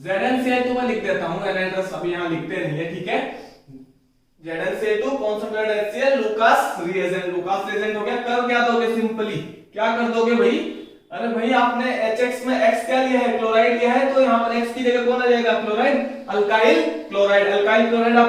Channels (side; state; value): both; identical; correlation 1.00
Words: तो मैं लिख देता हूं, एनहाइड्रस अभी यहां लिखते नहीं है, ठीक है। ZnCl2 concentrated HCl Lucas reagent. Lucas reagent हो गया। कर क्या दोगे? सिंपली क्या कर दोगे भाई? अरे भाई आपने HX में X क्या लिया है? क्लोराइड लिया है, तो यहां पर X की जगह कौन आ जाएगा? Chloride, alkyl chloride. Alkyl chloride